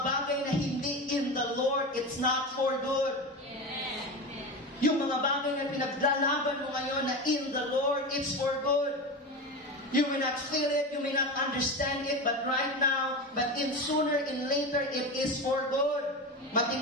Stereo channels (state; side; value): normal; both; correlation 0.23